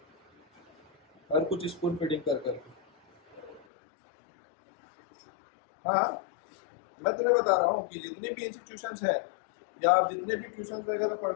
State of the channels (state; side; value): drops out; right; at 3.7 s